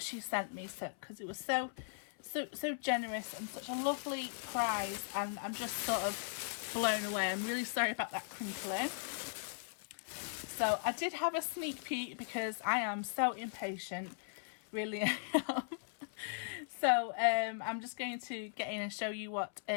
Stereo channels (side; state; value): right; silent; 52 dB below the other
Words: she sent me, because it was so generous and such a lovely prize, and I'm just sort of blown away. I'm really sorry about that crinkling. So I did have a sneak peek because I am so impatient, really am. So I'm just going to get in and show you what